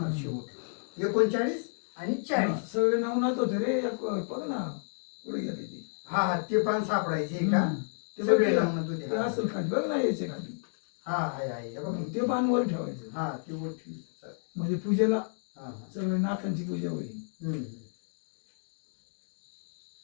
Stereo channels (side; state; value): right; silent; digital silence